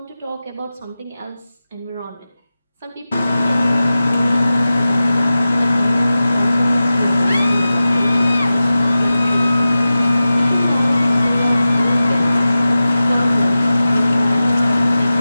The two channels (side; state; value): both; inverted; correlation -0.95